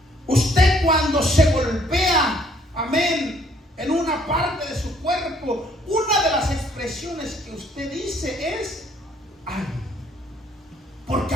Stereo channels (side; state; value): both; normal; correlation 0.63